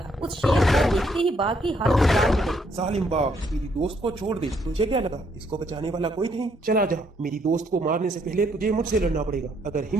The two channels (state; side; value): normal; both; correlation 0.71